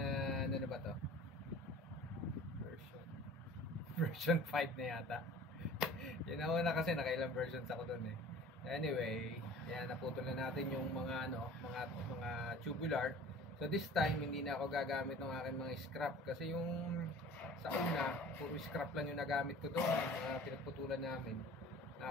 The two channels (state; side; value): normal; both; correlation 0.44